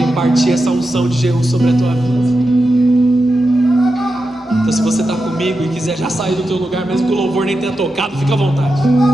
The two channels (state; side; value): normal; both; correlation 0.89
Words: impartir essa unção de Jeú sobre a tua vida. Então se você está comigo e quiser já sair do teu lugar, mesmo que o louvor nem tenha tocado, fica à vontade.